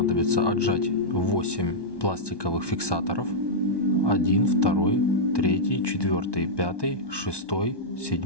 отжать 8 пластиковых фиксаторов. 1, 2, 3, 4, 5, 6,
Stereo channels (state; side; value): late; right; 1.2 ms